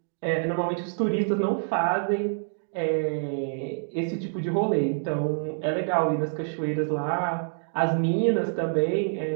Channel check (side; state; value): left; silent; digital silence